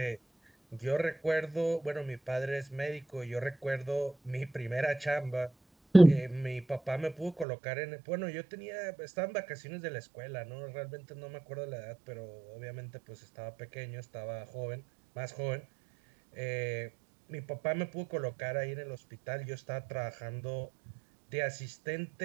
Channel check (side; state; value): left; drops out; at 7.5 s